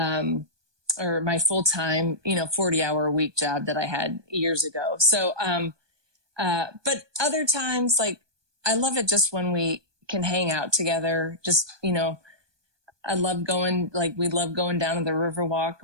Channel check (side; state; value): left; late; 1.2 ms